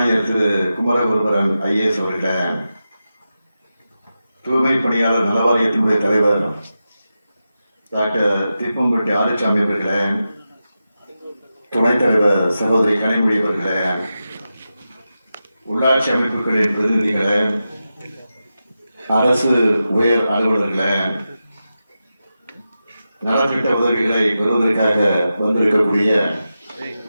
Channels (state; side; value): inverted; both; correlation -0.91